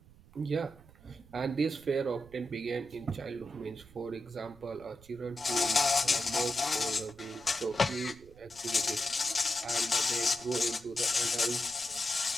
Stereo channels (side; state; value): right; noise; rumble, 23 dB below the sound